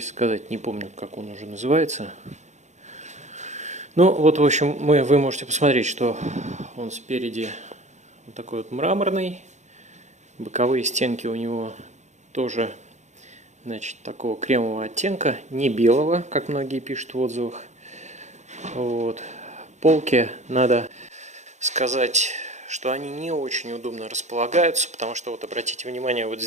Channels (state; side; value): late; left; 0.34 ms